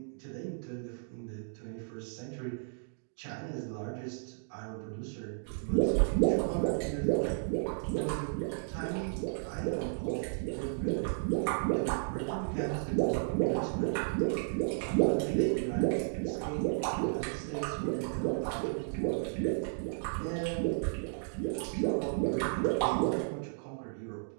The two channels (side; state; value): left; silent; digital silence